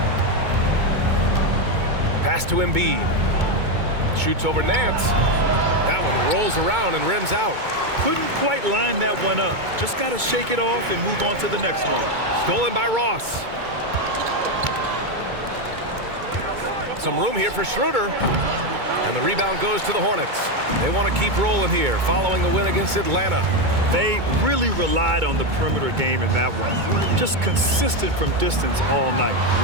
Pass to Embiid. Shoots over Nance. That one rolls around and rims out. Couldn't quite line that one up. Just got to shake it off and move on to the next one. Stolen by Ross. Some room here for Schroeder. And the rebound goes to the Hornets. They want to keep rolling here following the win against Atlanta. They really relied on the perimeter game in that one. Just consistent from distance all night.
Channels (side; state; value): left; late; 2.2 ms